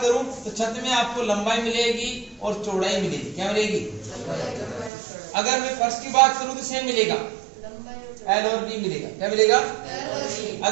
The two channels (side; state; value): left; drops out; at 4.9 s